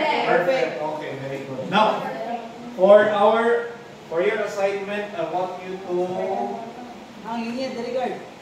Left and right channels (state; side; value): identical; both; correlation 1.00